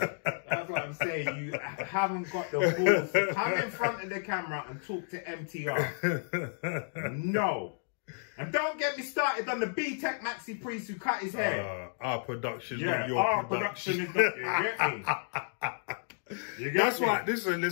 That's what I'm saying. You haven't got the balls to come in front of the camera and talk to MTR. No. And don't get me started on the B-Tech Maxi Priest who cut his hair. Our production, not your our production. is not, you get me? That's why,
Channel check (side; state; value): right; silent; digital silence